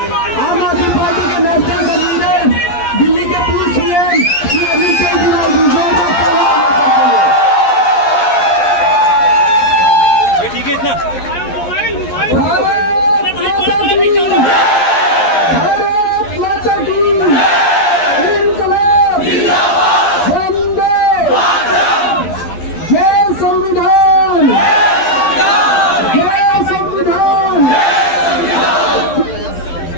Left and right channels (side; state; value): right; late; 11 ms